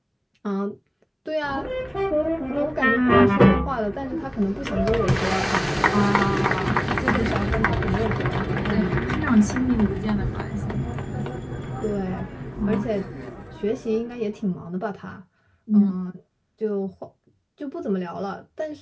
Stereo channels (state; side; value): identical; both; correlation 1.00